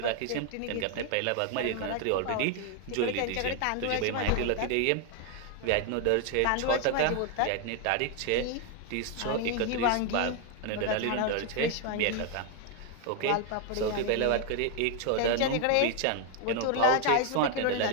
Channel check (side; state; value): both; different; correlation 0.01